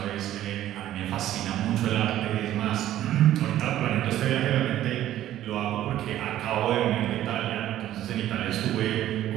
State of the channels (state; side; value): quieter; left; 12.9 dB